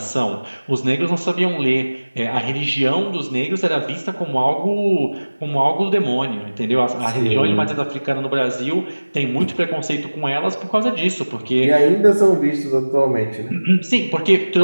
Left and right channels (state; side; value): inverted; both; correlation -1.00